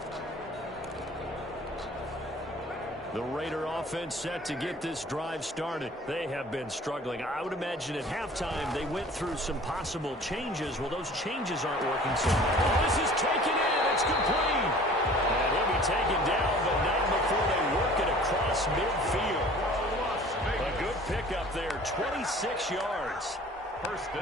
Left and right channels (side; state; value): both; normal; correlation 0.47